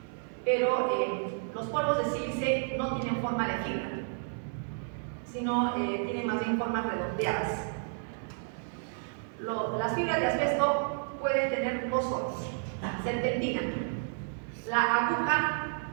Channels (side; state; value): left; silent; 57 dB below the other